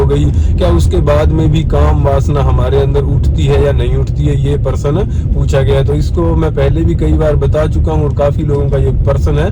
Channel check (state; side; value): identical; both; correlation 1.00